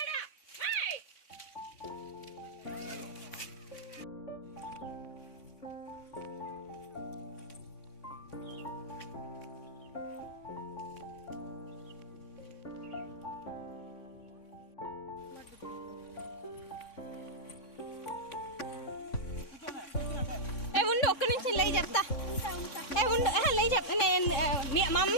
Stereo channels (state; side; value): late; right; 3.5 ms